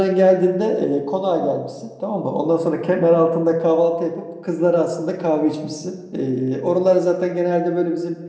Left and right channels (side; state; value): both; identical; correlation 1.00